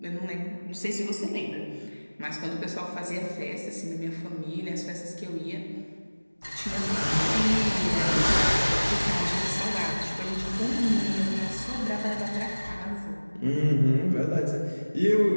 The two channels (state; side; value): inverted; both; correlation -1.00